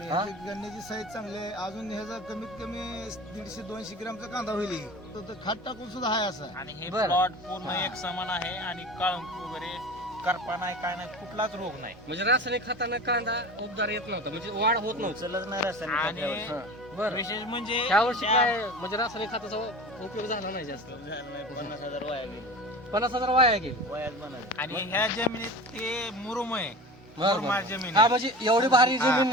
हा? गन्याची साईज चांगली आहे. अजून ह्याचा कमीत कमी 150-200 ग्रामचा कांदा होईल. तो खाट टाकून सुद्धा आहे असा. आणि हे बरं. प्लॉट पूर्ण एक समान आहे आणि काळुंकी वगैरे करपा नाही काय नाही कुठलाच रोग नाही. म्हणजे रासायनिक खतानं कांदा उबदार येत नव्हता, म्हणजे वाढ होत नव्हती. उचलच नाही रासायनिक खत आणि यावर्षी. हा, बरं. विशेष म्हणजे ह्या वर्षी त्या- काय म्हणजे रासायनिक खताचा उपयोग झाला नाही जास्त. 50,000 वाया गेली. 50,000 वाया गेली. वयाच बनायचं. आणि ह्या जमिनीत ते मुरुम आहे. बरं, मुरमाड बरं. जमीन हा आहे. म्हणजे एवढी भारी हा, जमीन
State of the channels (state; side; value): normal; both; correlation 0.35